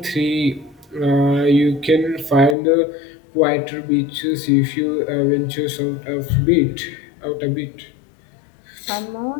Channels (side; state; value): right; drops out; at 2.6 s